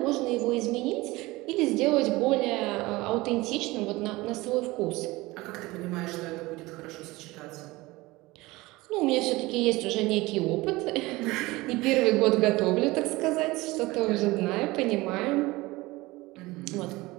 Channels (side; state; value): left; quieter; 20.8 dB